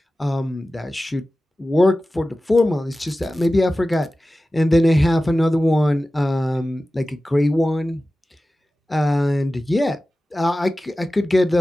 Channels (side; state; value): both; normal; correlation 0.95